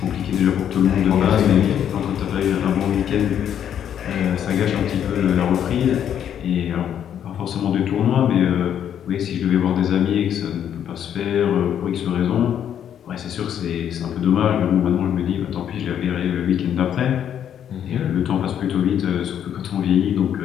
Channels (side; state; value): right; quieter; 9.5 dB